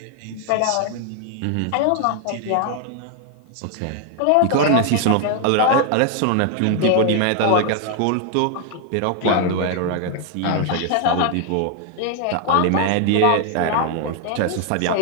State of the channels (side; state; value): both; different; correlation 0.00